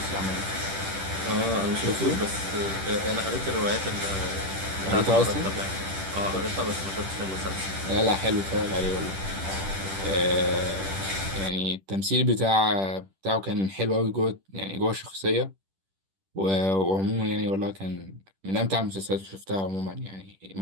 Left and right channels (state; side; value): late; left; 10 ms